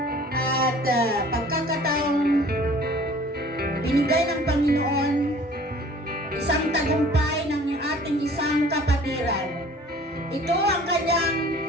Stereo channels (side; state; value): both; normal; correlation 0.50